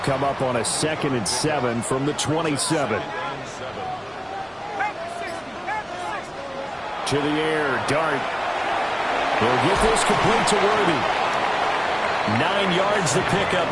come up on a 2nd and 7 from the 27. To the air, Dart. He'll get this complete to Worthy. 9 yards to pick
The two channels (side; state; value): both; identical; correlation 1.00